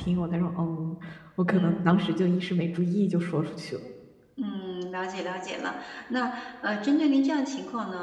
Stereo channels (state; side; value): identical; both; correlation 1.00